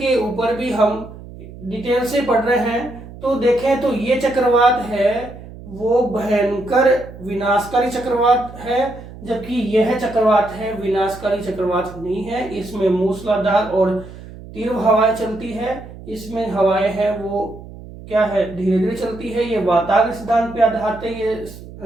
ऊपर भी हम डिटेल से पढ़ रहे हैं। तो देखें तो ये चक्रवात है वो भयंकर विनाशकारी चक्रवात है, जबकि यह चक्रवात है विनाशकारी चक्रवात नहीं है। इसमें मूसलाधार और तीव्र हवाएं चलती है। इसमें हवाएं हैं वो क्या है? धीरे धीरे चलती है। ये वातावरण सिद्धांत पे आधारित है, ये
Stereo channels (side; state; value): right; noise; hum, 16 dB below the sound